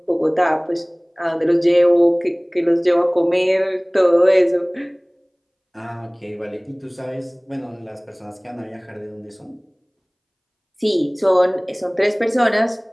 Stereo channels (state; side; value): identical; both; correlation 1.00